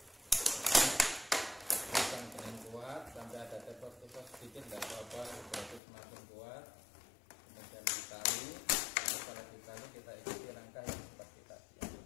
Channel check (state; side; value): drops out; right; at 5.8 s